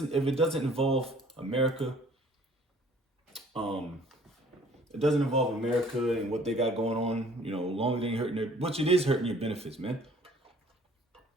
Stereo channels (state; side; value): normal; both; correlation 0.55